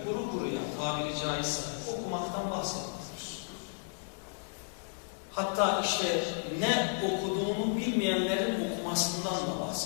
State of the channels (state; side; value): silent; right; 56 dB below the other